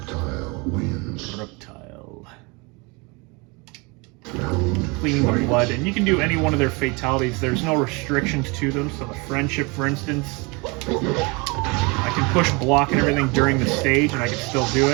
wins. Reptile. Cleaning the blood, and you can do any one of their fatalities. There's no restrictions to them. So the friendship, for instance, I can push block and everything during the stage, and I can still do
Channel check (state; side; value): quieter; left; 28.1 dB